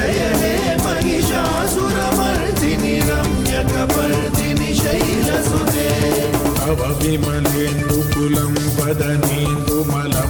हे महिषासुरमर्दिनि रम्यकपर्दिनि शैलसुते तव विमलेन्दुकुलं वदनेन्दुमलं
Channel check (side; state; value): both; identical; correlation 1.00